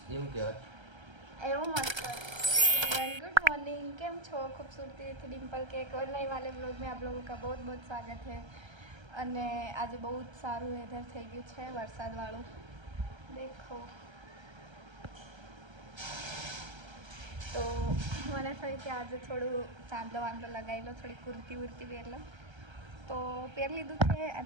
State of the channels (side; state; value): left; late; 1.3 ms